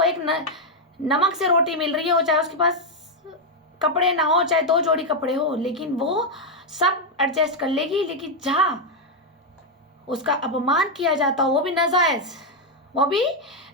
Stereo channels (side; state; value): both; normal; correlation 0.01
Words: एक नमक से रोटी मिल रही हो, चाहे उसके पास कपड़े ना हो, चाहे 2 जोड़ी कपड़े हो, लेकिन वो सब एडजस्ट कर लेगी। लेकिन जहाँ उसका अपमान किया जाता हो, वो भी नाजायज,